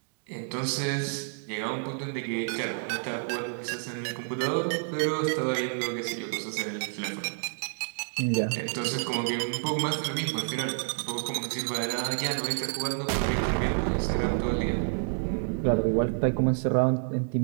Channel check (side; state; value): left; silent; digital silence